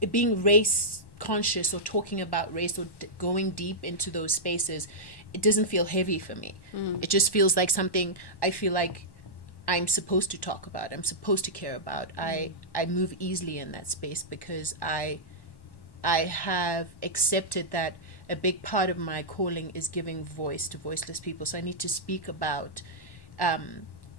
being race conscious or talking about race or going deep into those spaces. It doesn't feel heavy for me. It just feels like something I feel like I'm supposed to talk about. I'm supposed to care about. I move easily in that space because I have accepted that a big part of my calling is giving voice to voiceless people. So I need to speak about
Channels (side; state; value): right; late; 1.1 ms